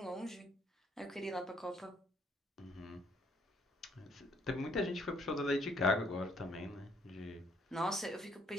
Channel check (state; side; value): normal; both; correlation 0.66